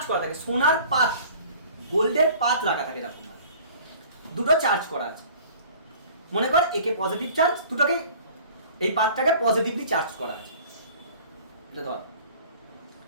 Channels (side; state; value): both; inverted; correlation -0.48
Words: করা থাকে, সোনার পাত, গোল্ডের পাত রাখা থাকে, এরকম দুটো চার্জ করা আছে। মনে কর একে পজিটিভ চার্জ, দুটোকে এই পাতটাকে পজিটিভলি চার্জ করা আছে, এটা ধর